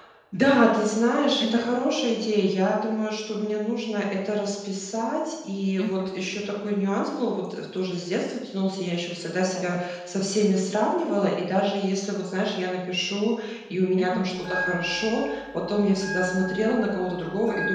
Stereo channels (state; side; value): identical; both; correlation 1.00